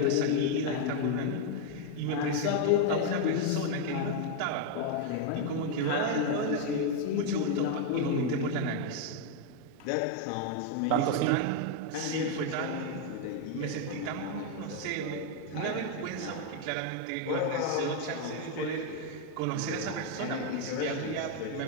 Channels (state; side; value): different; both; correlation 0.01